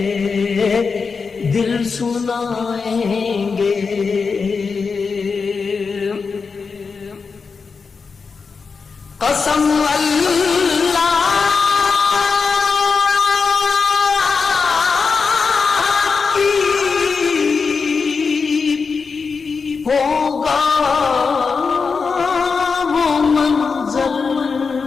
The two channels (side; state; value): right; quieter; 5.1 dB